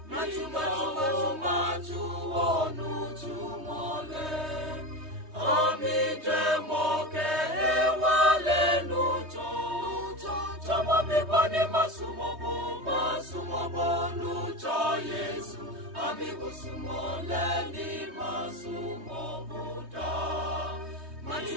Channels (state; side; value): late; left; 3.2 ms